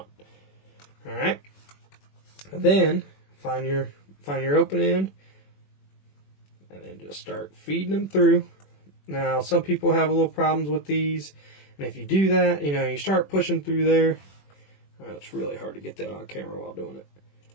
All right. And then find your open end, and then just start feeding them through. Now, some people have a little problems with these, and if you do that, you start pushing through there. It's really hard to get that on camera while doing it.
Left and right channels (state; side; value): late; right; 21 ms